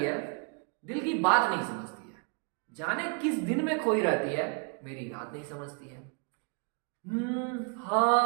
है, दिल की बात नहीं समझती है, जाने किस दिन में खोई रहती है, मेरी रात नहीं समझती है।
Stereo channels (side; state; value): left; quieter; 38.1 dB